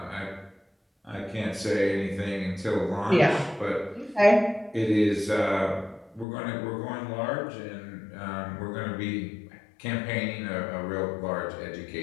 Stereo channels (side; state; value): right; drops out; at 6.2 s